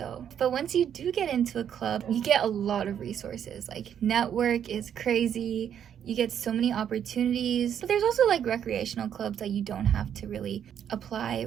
but once you do get into a club, you get a lot of resources. Like, network is crazy. You get so many opportunities. But there's also like recreational clubs that you don't have to really apply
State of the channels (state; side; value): quieter; left; 9.1 dB